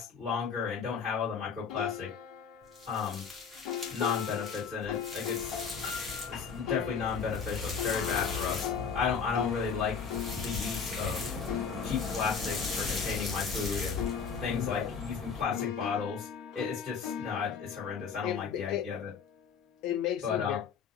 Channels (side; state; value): right; quieter; 6.1 dB